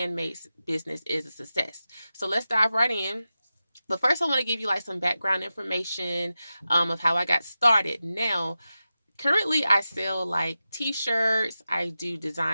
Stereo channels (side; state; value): both; inverted; correlation -0.92